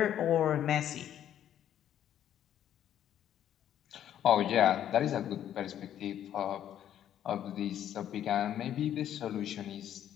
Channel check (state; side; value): quieter; right; 10.7 dB